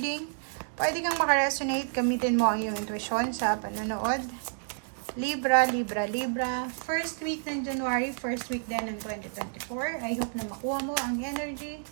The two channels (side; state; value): left; silent; digital silence